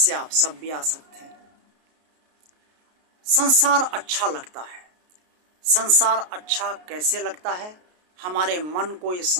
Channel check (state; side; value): late; left; 33 ms